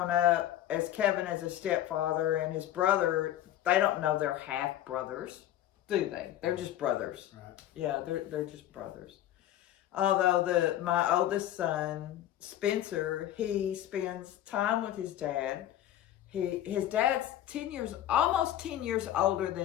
up as Kevin as a stepfather, and his brother, they don't know they're half brothers, do they? They're just brothers. Right. Yeah, they're just brothers. Although my oldest son, Spencer, he spends time with his dad. His dad's almost 10 years older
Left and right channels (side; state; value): right; quieter; 12.5 dB